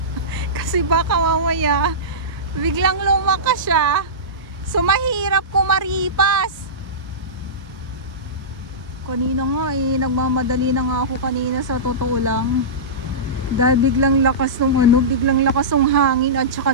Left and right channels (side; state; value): both; normal; correlation -0.19